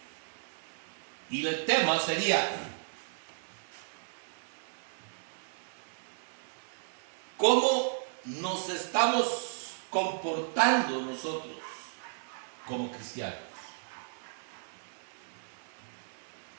Y el tema sería: ¿cómo nos estamos comportando nosotros como cristianos?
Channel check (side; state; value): left; silent; digital silence